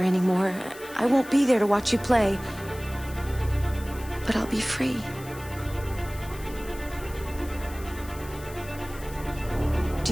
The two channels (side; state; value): left; noise; hiss, 18 dB below the sound